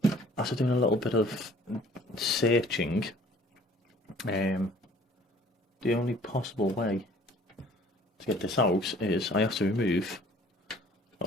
after doing a little bit of searching, the only possible way to get this out is I have to remove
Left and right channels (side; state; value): both; normal; correlation 0.53